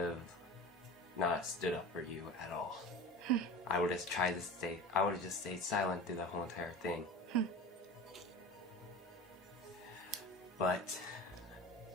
not stood up for you at all. I would have just stayed silent through the whole entire thing. But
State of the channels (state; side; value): normal; both; correlation 0.34